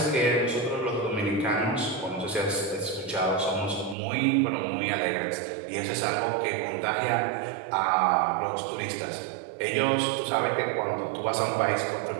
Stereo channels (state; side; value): drops out; left; at 4.0 s